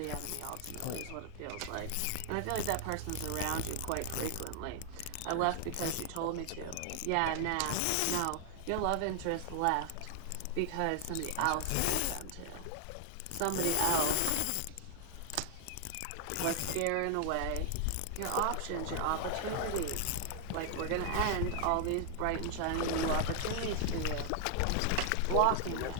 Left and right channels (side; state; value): both; different; correlation 0.00